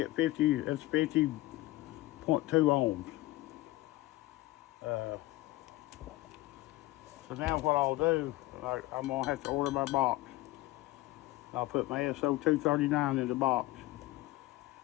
50, that's 50.2 ohms. So now what I'll do, I'm going to have to order my box. I'll put my SO239 in the box.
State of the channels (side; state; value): right; quieter; 18.2 dB